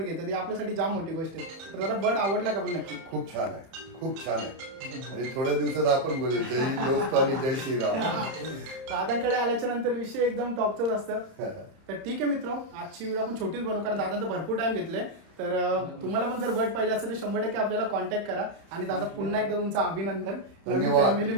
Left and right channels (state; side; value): late; left; 30 ms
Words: घेतात. ही आपल्यासाठी जाम मोठी गोष्ट आहे. तर दादा बर्ड आवडला का पण नक्की. खूप छान आहे खूप छान आहे. आणि थोड्या दिवसात आपण बोलू जय हिंद दोस्त आणि जय श्रीराम. दादांकडे आल्याच्या नंतर विषय एकदम टॉपचाच असतं. तर ठीक आहे मित्र आजची व्हिडिओ आपण छोटीच बनवू कारण दादांचं भरपूर टाइम घेतले. तर तुम्हाला पण जर बर्ड पाहिजे असेल तर 100% आपल्याला कॉन्टॅक्ट करा. आणि दादा पुन्हा एकदा तुमचं अभिनंदन. धन्यवाद फॅमिली